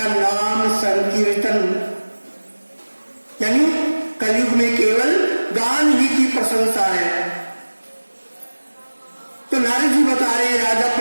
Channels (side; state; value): both; inverted; correlation -1.00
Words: नाम संकीर्तन, यानी कलयुग में केवल गान ही की प्रशंसा है। तो नारद जी बता रहे राजा